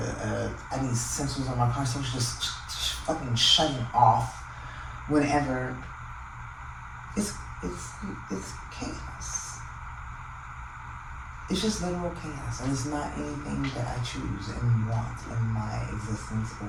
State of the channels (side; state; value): both; identical; correlation 1.00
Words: need sensors on my car, so it's just fucking shutting off whenever. It's chaos. It's just literal chaos, and it's not anything that I choose and want in my existence